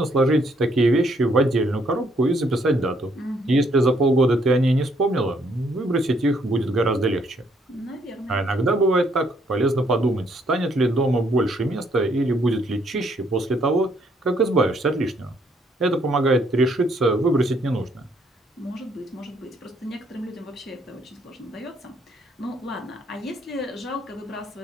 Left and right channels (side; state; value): both; normal; correlation 0.69